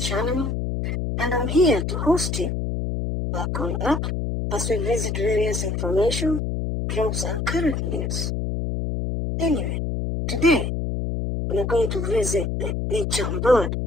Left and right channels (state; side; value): noise; left; hum, 1 dB below the sound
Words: and I'm here to host you. Welcome up as we visit various information, jobs, and current news. Anyway, today we're going to visit the beach on board.